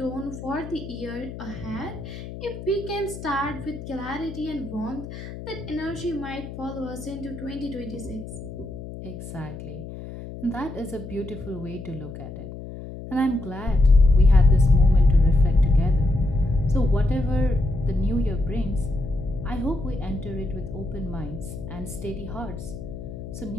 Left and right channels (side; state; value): left; noise; hum, 11 dB below the sound